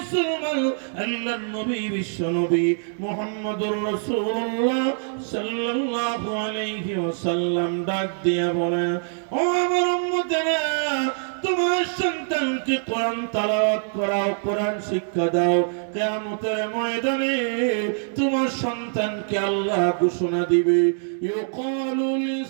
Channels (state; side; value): silent; left; digital silence